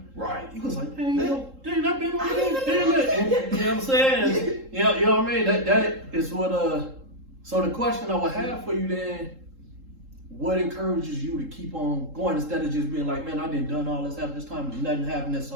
Right. You was like, dang, that been on there. You know what I'm saying? You know what I mean? That is what, so the question I would have for you then, what encourages you to keep on going instead of just being like, man, I done all this after this time and nothing happened, that's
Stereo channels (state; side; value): late; left; 3.7 ms